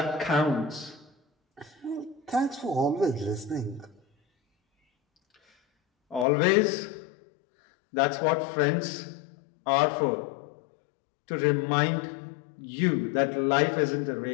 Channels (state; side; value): drops out; right; at 6.2 s